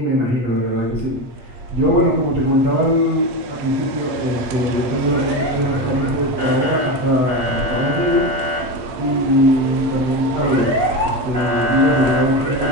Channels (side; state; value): left; late; 8.6 ms